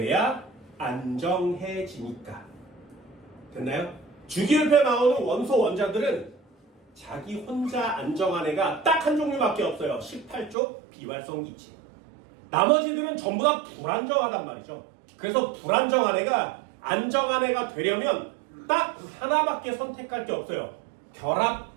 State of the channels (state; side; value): drops out; left; at 10.6 s